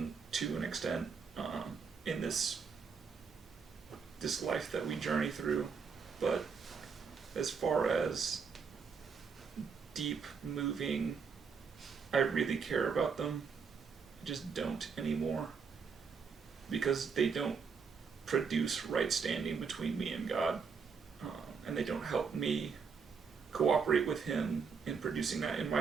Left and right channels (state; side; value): quieter; left; 5.7 dB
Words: to an extent in this life that we journey through. But as far as deep moving, I really care about them. I just don't anymore. Because they don't produce right standing between me and God. And they don't help me cooperate with Him in producing that in